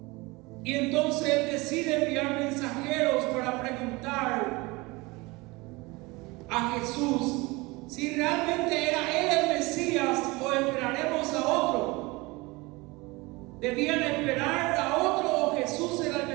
y entonces él decide enviar mensajeros para preguntar a Jesús si realmente era él el Mesías o esperaremos a otro. ¿Debían esperar a otro o Jesús era el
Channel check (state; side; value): quieter; left; 23.6 dB